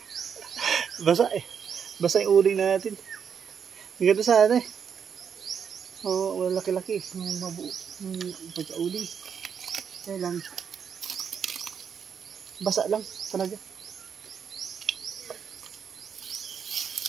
Basa eh. Basa yung uling natin. Ang ganda sana eh. Oo, laki-laki. Yung mabuo. Yung pagka-uling. Kaya lang. Basa lang talaga.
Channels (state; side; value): quieter; left; 7.2 dB